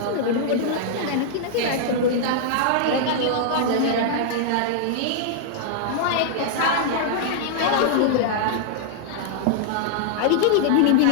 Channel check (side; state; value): both; different; correlation -0.01